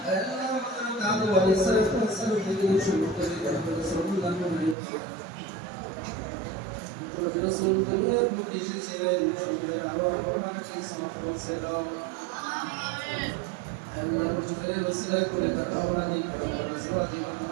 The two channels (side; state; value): left; drops out; at 4.8 s